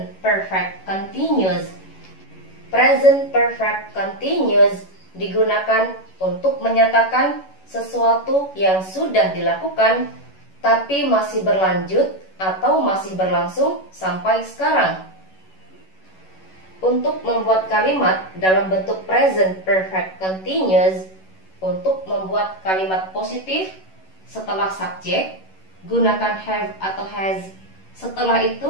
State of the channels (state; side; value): late; right; 11 ms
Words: perfect continuous. Present perfect continuous digunakan untuk menyatakan sesuatu yang sudah dilakukan tapi masih berlanjut atau masih berlangsung sampai sekarang. Untuk membuat kalimat dalam bentuk present perfect continuous, untuk membuat kalimat positif setelah subjek, gunakan have atau has. Setelah